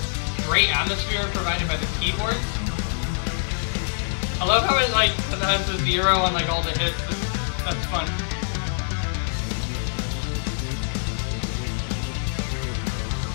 atmosphere provided by the keyboards. I love how it has the zero on like all the hits. That's fun.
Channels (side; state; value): right; silent; digital silence